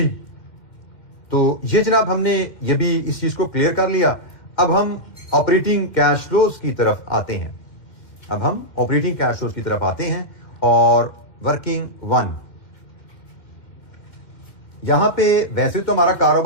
तो ये जनाब हमने ये भी इस चीज को क्लियर कर लिया। अब हम ऑपरेटिंग कैश फ्लोज की तरफ आते हैं, अब हम ऑपरेटिंग कैश फ्लोज की तरफ आते हैं और वर्किंग 1। यहां पे वैसे तो हमारा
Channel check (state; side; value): late; right; 2.1 ms